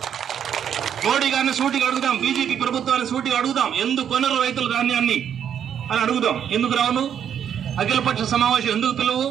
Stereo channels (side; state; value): left; quieter; 8.8 dB